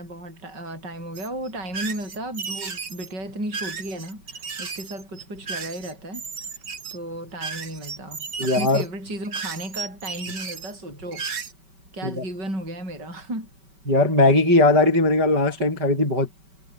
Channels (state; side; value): late; left; 5.2 ms